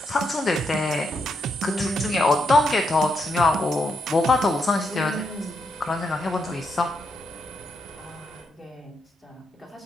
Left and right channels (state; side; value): normal; both; correlation 0.80